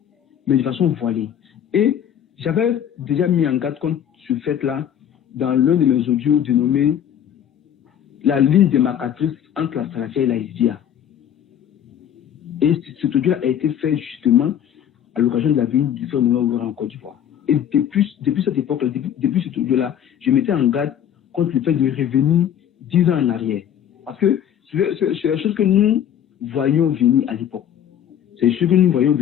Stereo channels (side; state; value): right; quieter; 9.6 dB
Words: mais de façon voilée. Et j'avais déjà mis en garde contre ce fait-là dans l'un de mes audios dénommé la ligne démarcatrice entre la salafia et la hizbia. Et cet audio a été fait justement à l'occasion de la venue du frère Mohamed Oura en Côte d'Ivoire. Et depuis cette époque-là, depuis cet audio-là, je mettais en garde contre le fait de revenir 10 ans en arrière. Parce que c'est la chose que nous voyions venir à l'époque. C'est ce que nous voyions